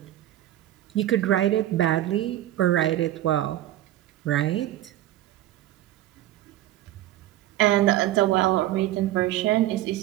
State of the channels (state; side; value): quieter; left; 14.0 dB